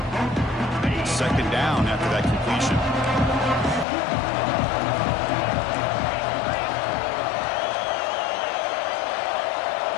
Second down after that completion.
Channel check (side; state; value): right; drops out; at 3.9 s